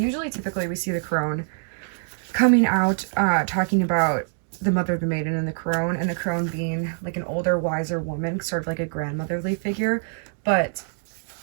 typically we see the crone coming out talking about the mother, the maiden, and the crone being like an older, wiser woman, sort of like a grandmotherly figure. But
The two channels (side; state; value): left; silent; digital silence